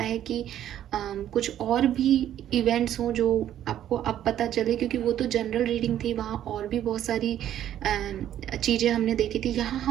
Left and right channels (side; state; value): left; quieter; 11.3 dB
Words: है कि कुछ और भी इवेंट्स हों जो आपको अब पता चले, क्योंकि वो तो जनरल रीडिंग थी, वहाँ और भी बहुत सारी चीज़ें हमने देखी थी। यहाँ